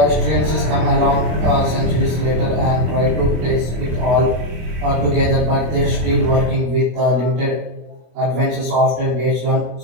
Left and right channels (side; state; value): left; late; 24 ms